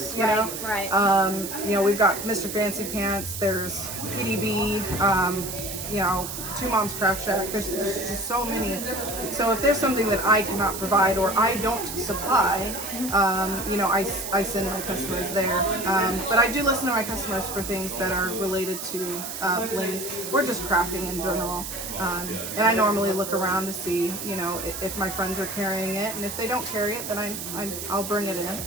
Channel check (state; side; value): noise; right; hiss, 7 dB below the sound